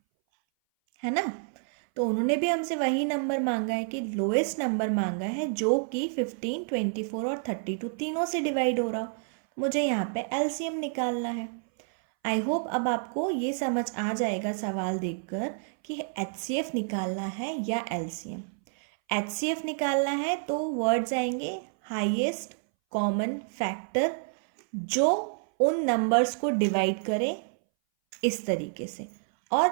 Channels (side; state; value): left; silent; 59 dB below the other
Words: है ना। तो उन्होंने भी हमसे वही नंबर मांगा है कि लोएस्ट नंबर मांगा है जो कि 15, 24 और 32 तीनों से डिवाइड हो रहा हो। मुझे यहाँ पे एलसीएम निकालना है। आई होप अब आपको ये समझ आ जाएगा सवाल देखकर कि एचसीएफ निकालना है या एलसीएम। एचसीएफ निकालना है तो वर्ड्स आएंगे हाईएस्ट कॉमन फैक्टर जो उन नंबर्स को डिवाइड करे इस तरीके से,